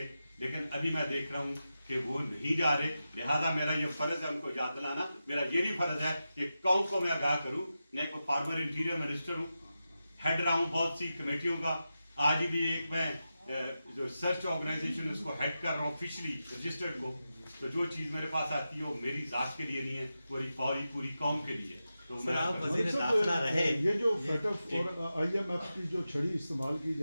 لیکن ابھی میں دیکھ رہا ہوں کہ وہ نہیں جا رہے. لہذا میرا یہ فرض ہے ان کو یاد دلانا. میرا یہ بھی فرض ہے کہ قوم کو میں آگاہ کروں. میں ایک فارمر انٹیریئر منسٹر ہوں, ہیڈ رہا ہوں بہت سی کمیٹیوں کا. آج بھی ایک میں جو سرچ آرگنائزیشن اس کو ہیڈ کر رہا ہوں آفیشلی رجسٹرڈ کو. تو جو چیز میرے پاس آتی ہے وہ میری ذات کے لیے نہیں ہے, پوری قوم کے لیے. تو میں آپ وزیر داخلہ رہے. یہ جو FATF اور IMF کی جو چھڑی استعمال کی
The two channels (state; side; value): inverted; both; correlation -0.91